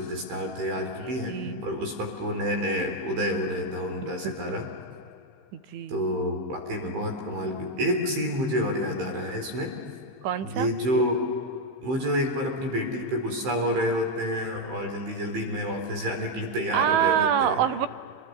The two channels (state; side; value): late; left; 15 ms